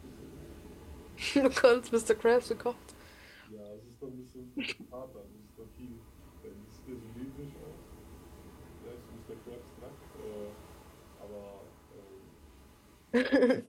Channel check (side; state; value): both; identical; correlation 1.00